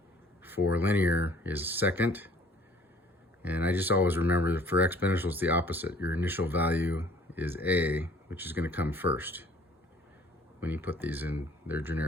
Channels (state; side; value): normal; both; correlation 0.55